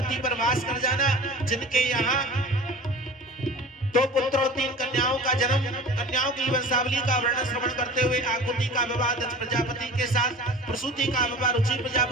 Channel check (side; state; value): both; normal; correlation 0.38